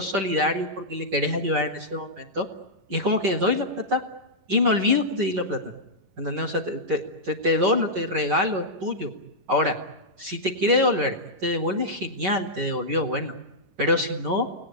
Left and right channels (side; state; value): left; late; 11 ms